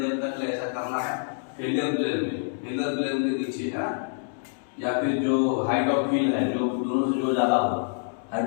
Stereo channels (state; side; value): silent; right; digital silence